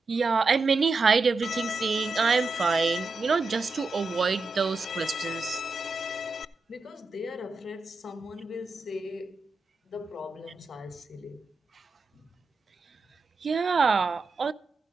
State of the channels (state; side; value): quieter; left; 3.7 dB